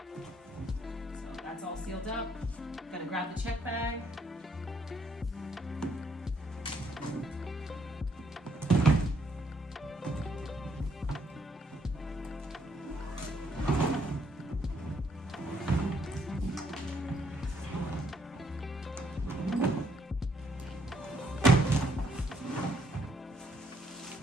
that's all sealed up. Gonna grab the check bag.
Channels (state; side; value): normal; both; correlation 0.70